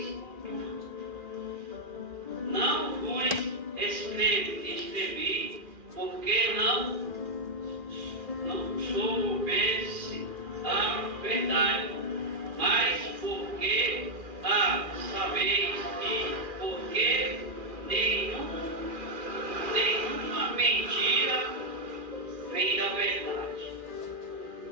tudo. Não vos escrevi, porque não soubesse a verdade, mas porque a sabeis, e porque nenhuma mentira vem da verdade.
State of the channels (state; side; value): late; left; 2.4 ms